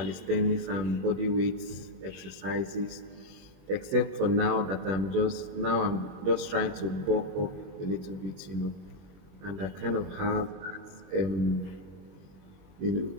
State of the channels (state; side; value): late; left; 21 ms